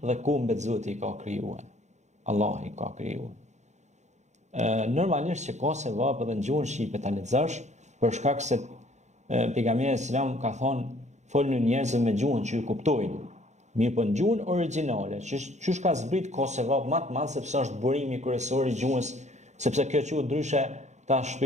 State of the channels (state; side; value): late; left; 0.34 ms